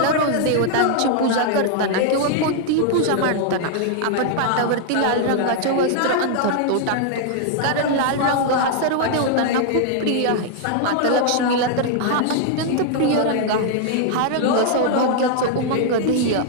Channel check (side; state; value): both; different; correlation 0.00